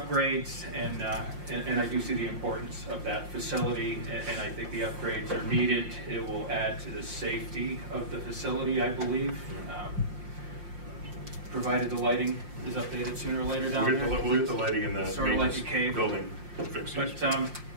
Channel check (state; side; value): late; left; 5.6 ms